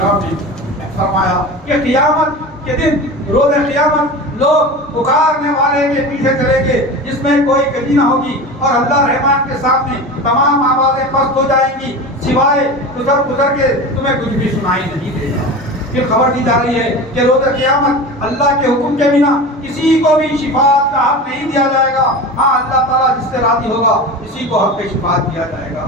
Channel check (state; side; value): normal; both; correlation 0.30